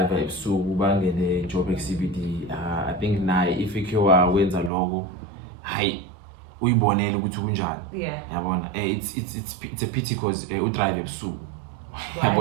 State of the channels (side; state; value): left; drops out; at 4.7 s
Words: ebusuku bangene Joburg CBD. I think naye if ikhiwa wenza lokho hayi uyibonele ukuthi kunjani. Yeah. Yabona it's a pity because udrive ebusuku.